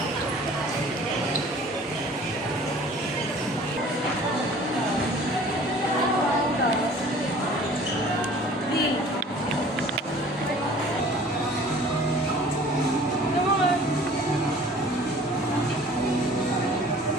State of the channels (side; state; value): both; normal; correlation 0.49